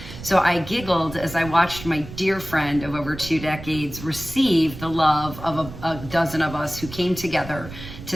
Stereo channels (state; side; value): noise; right; rumble, 13 dB below the sound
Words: So I giggled as I watched my dear friend of over 2 decades receive the love of a dozen of us who came together